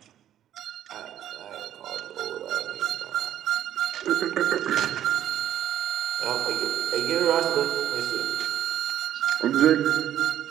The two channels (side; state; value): left; quieter; 11.3 dB